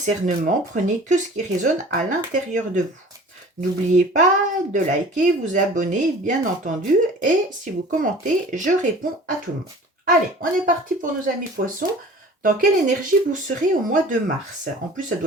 prenez que ce qui résonne à l'intérieur de vous. N'oubliez pas de liker, vous abonner, bien entendu, et si vous commentez, je réponds à tout le monde. Allez, on est parti pour nos amis poissons. Dans quelle énergie vous serez au mois de mars? En plus, ça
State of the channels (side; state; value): both; normal; correlation 0.44